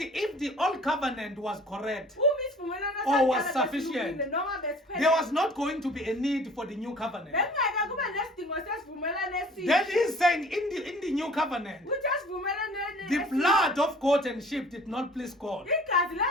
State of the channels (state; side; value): normal; both; correlation 0.49